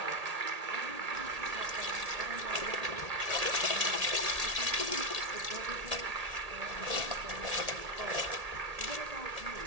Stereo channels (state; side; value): late; left; 1.8 ms